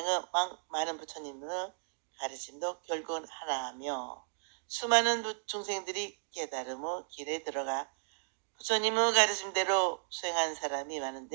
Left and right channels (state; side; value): silent; left; digital silence